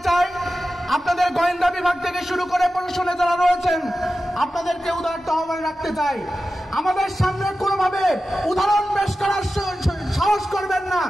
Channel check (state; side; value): normal; both; correlation 0.94